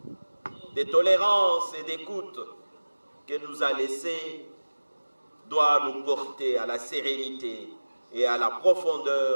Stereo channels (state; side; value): inverted; both; correlation -1.00